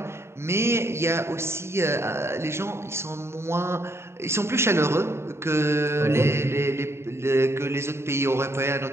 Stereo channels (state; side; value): late; left; 0.13 ms